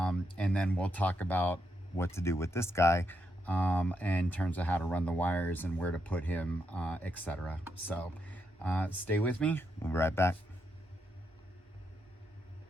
then we'll talk about what to do with this guy in terms of how to run the wires and where to put him, etc. So stay with me, we'll be right back.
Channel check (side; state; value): both; normal; correlation 0.81